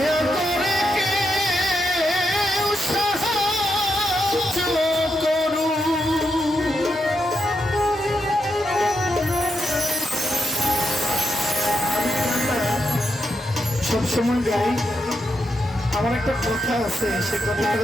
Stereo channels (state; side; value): normal; both; correlation 0.82